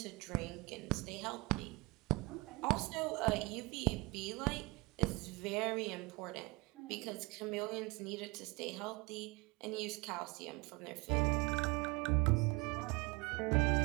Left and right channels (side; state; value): left; quieter; 24.8 dB